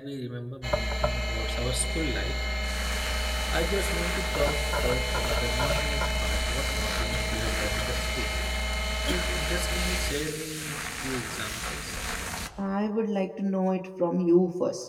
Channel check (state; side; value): identical; both; correlation 1.00